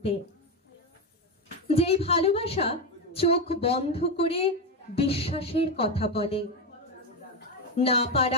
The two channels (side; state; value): both; normal; correlation 0.11